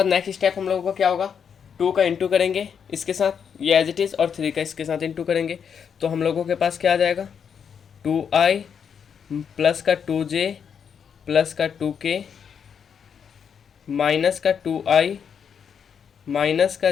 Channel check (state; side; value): quieter; right; 7.3 dB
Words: नेक्स्ट स्टेप हम लोगों का क्या होगा? 2 का इंटू करेंगे इसके साथ, ये एज इट इज़, और 3 का इसके साथ इंटू करेंगे। तो हम लोगों के पास क्या आ जाएगा? 2i प्लस का 2j प्लस का 2k माइनस का 2i माइनस का